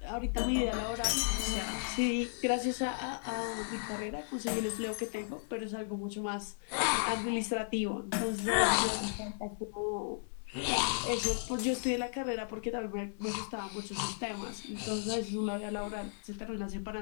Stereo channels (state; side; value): silent; right; 54 dB below the other